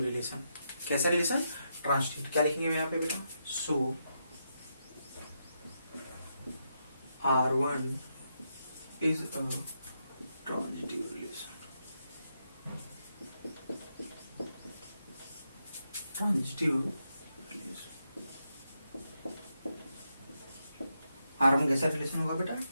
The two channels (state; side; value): inverted; both; correlation -0.83